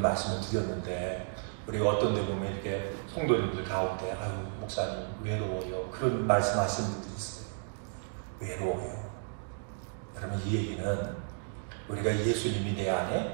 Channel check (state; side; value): silent; left; digital silence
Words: 드렸는데, 우리가 어떤 데 보면 이렇게 성도님들 가운데 아유 목사님 외로워요, 그런 말씀하시는 분들이 있어요. 외로워요. 그러면 이 얘기는 우리가 예수님이 내